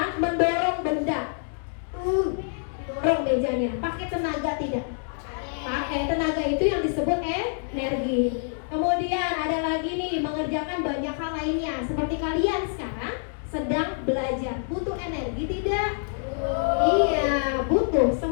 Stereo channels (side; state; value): right; silent; digital silence